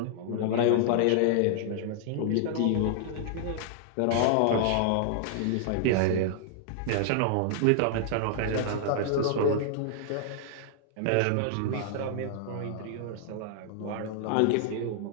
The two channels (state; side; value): different; both; correlation -0.01